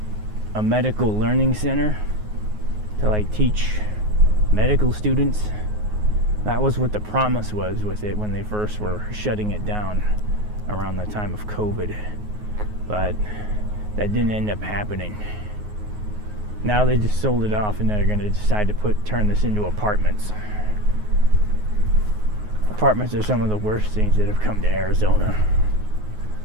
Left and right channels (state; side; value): late; left; 9.5 ms